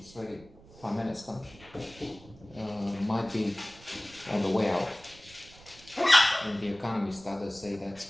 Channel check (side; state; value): right; noise; rumble, 22 dB below the sound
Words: Prime Minister, might be on the way out. And the economists, others say that's